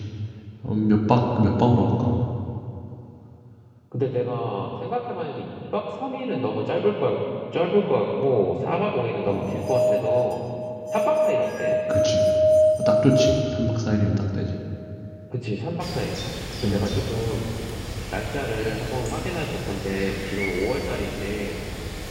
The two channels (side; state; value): both; identical; correlation 1.00